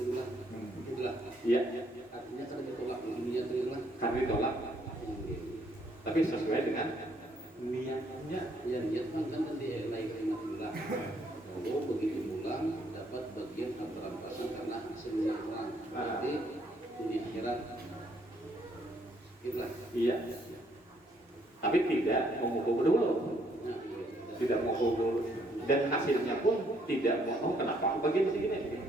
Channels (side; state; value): both; normal; correlation 0.69